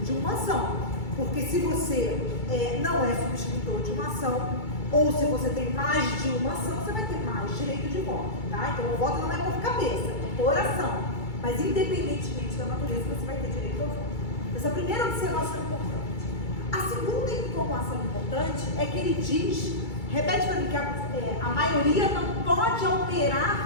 de uma ação. Porque se você não é subscritor de uma ação, ou se você tem mais de uma ação, você vai ter mais direito de voto, tá? Então o voto não é por cabeça, é por ação. Mas independentemente da natureza, você vai ter direito ao voto. Essa primeira observação é importante. A segunda informação importante é que ele diz, repete para mim, que a maioria não pode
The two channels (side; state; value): right; late; 2.3 ms